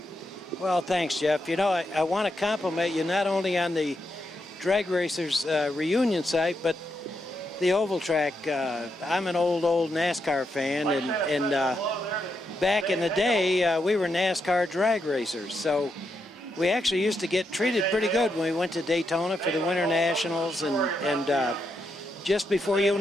Well, thanks, Jeff. You know, I want to compliment you not only on the Drag Racers reunion site, but the oval track. I'm an old NASCAR fan, and back in the day, we were NASCAR drag racers. So we actually used to get treated pretty good when we went to Daytona for the Winter Nationals, and just before you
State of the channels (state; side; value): normal; both; correlation 0.82